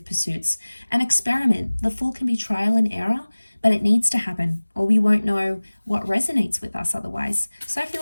pursuits. An experiment. The Fool can be trial and error, but it needs to happen, or we won't know what resonates with us otherwise. So I feel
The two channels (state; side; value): inverted; both; correlation -1.00